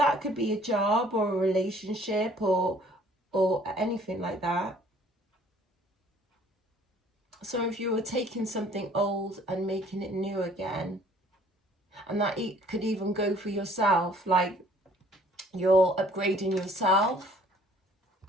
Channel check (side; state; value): both; normal; correlation 0.56